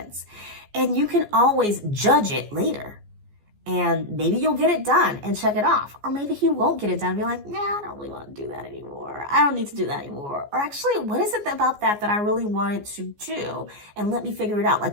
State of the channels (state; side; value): late; left; 14 ms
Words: And you can always judge it later. And maybe you'll get it done and check it off. Or maybe you won't get it done and be like, nah, I don't really want to do that anymore. I don't need to do that anymore. Or actually, what is it about that I really wanted to do? And let me figure it out.